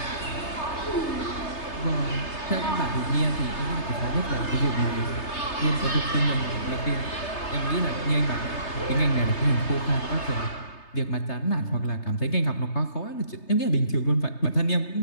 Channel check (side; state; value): right; late; 3.3 ms